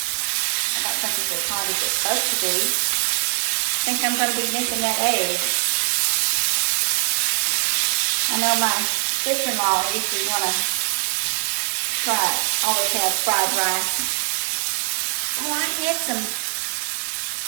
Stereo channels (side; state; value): left; silent; digital silence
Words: I don't think it's as hot as it's supposed to be. I think I'm going to be making that egg. I know my sister-in-law usually want to try, always have fried rice. Oh, I had some,